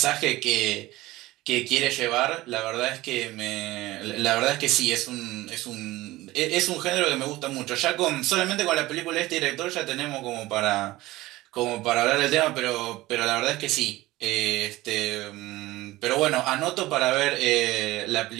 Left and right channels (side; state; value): left; quieter; 18.2 dB